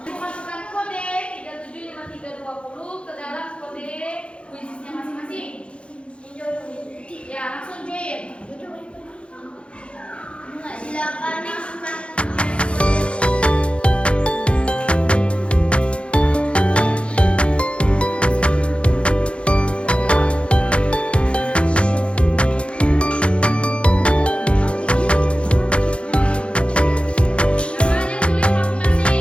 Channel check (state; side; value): late; right; 0.059 ms